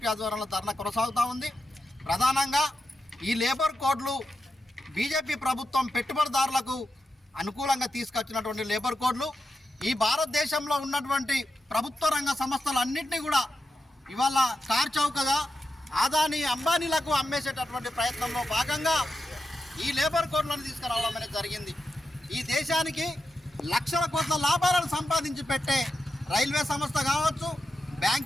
ఆధ్వర్యంలో ధర్నా కొనసాగుతూ ఉంది. ప్రధానంగా ఈ లేబర్ కోడ్లు బీజేపీ ప్రభుత్వం పెట్టుబడిదారులకు అనుకూలంగా తీసుకొచ్చినటువంటి లేబర్ కోడ్లు ఈ భారతదేశంలో ఉన్నటువంటి ప్రభుత్వ రంగ సంస్థలన్నింటినీ కూడా ఇవాళ కార్చౌకగా ఆదాని అంబానీలకు అమ్మేసేటటువంటి ప్రయత్నంలో భాగంగా ఈ లేబర్ కోడ్లను తీసుకురావడం అనేది జరిగింది. ఈ దేశానికి లక్షల కోట్ల లాభాలను సంపాదించి పెట్టే రైల్వే సంస్థ కావచ్చు,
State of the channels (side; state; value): both; normal; correlation 0.88